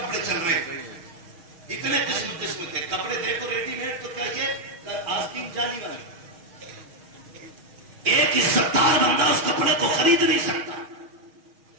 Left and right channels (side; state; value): left; late; 6.4 ms